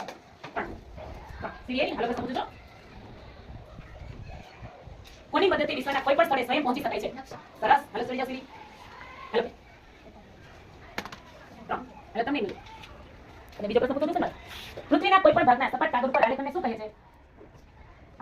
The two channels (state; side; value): identical; both; correlation 1.00